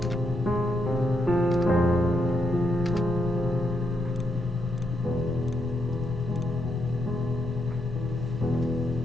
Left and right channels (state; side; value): normal; both; correlation 0.80